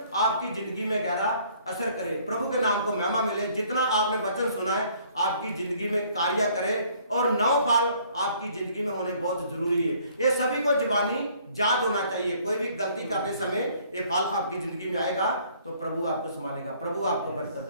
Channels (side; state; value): both; inverted; correlation -0.60